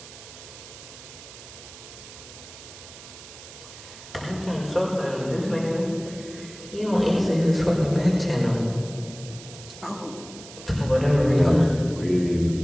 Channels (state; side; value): noise; right; hiss, 16 dB below the sound